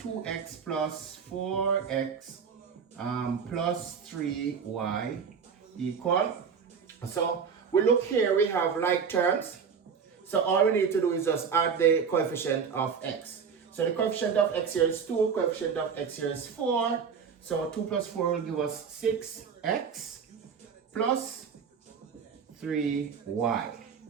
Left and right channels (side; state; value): left; quieter; 6.4 dB